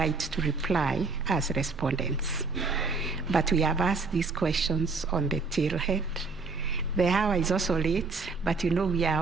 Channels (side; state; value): left; quieter; 4.1 dB